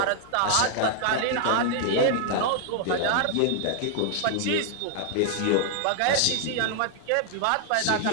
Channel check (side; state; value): both; different; correlation 0.00